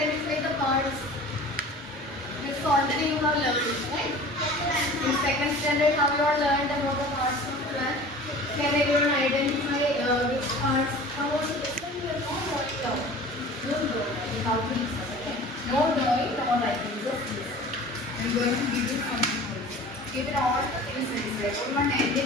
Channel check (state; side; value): normal; both; correlation 0.41